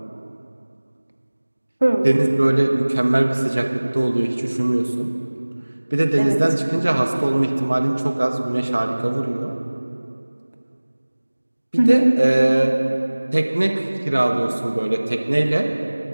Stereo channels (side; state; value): both; inverted; correlation -1.00